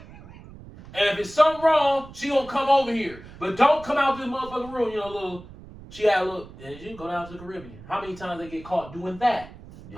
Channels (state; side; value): noise; right; rumble, 18 dB below the sound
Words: And if it's something wrong, she gonna come over here. But don't come out this motherfucking room, she had a little, and you go down to the Caribbean. How many times they get caught doing that?